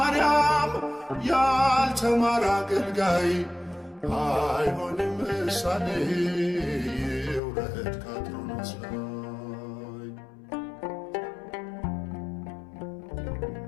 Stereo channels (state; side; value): drops out; right; at 7.4 s